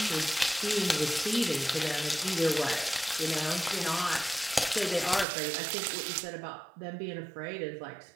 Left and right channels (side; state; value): left; drops out; at 5.2 s